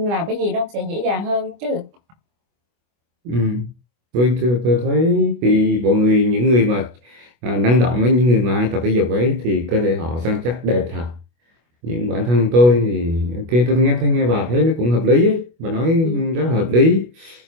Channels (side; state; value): left; late; 25 ms